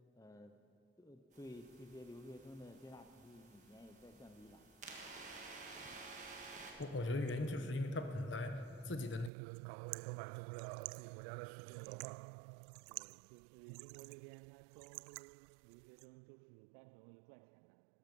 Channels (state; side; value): drops out; left; at 9.3 s